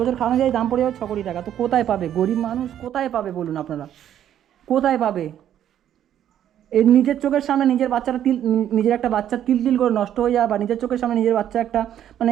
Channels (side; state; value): left; quieter; 10.6 dB